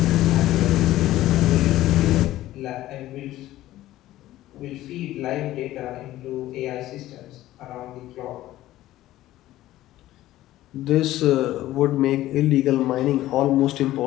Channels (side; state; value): right; quieter; 15.1 dB